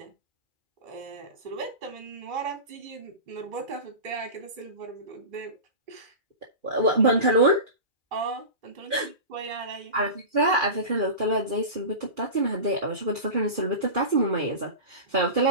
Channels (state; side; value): late; left; 2.4 ms